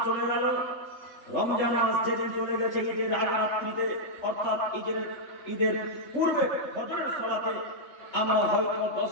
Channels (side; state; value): right; late; 3.4 ms